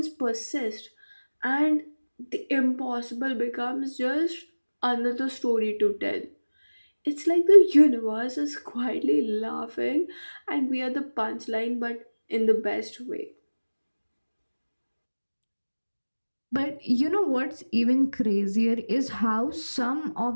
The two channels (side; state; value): both; inverted; correlation -1.00